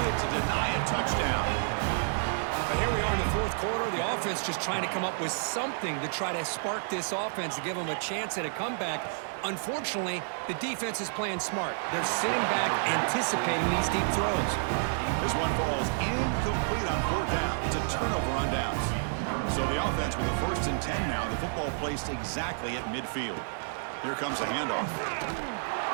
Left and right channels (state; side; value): silent; left; digital silence